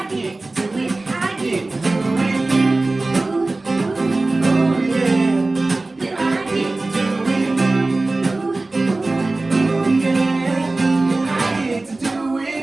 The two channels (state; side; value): quieter; left; 3.1 dB